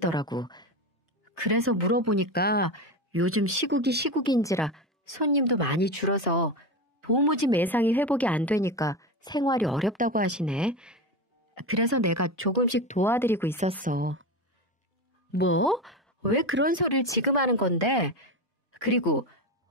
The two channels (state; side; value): normal; both; correlation 0.21